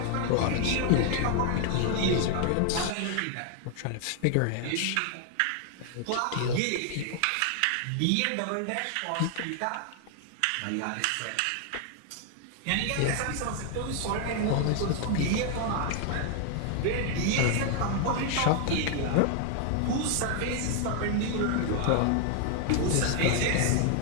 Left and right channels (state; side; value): different; both; correlation 0.00